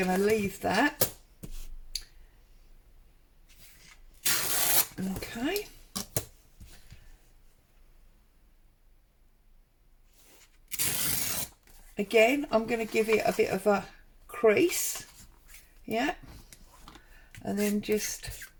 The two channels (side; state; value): both; identical; correlation 1.00